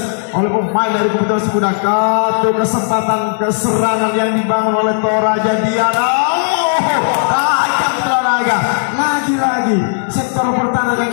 oleh pemain dari kubu Tunas Muda. Satu kesempatan keserangan yang dibangun oleh Toraja Diana. Tajam Toraja lagi-lagi sektor pertahanan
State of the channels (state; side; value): silent; right; digital silence